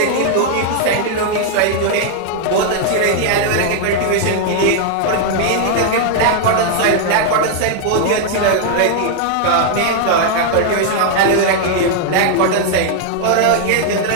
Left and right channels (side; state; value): both; different; correlation 0.00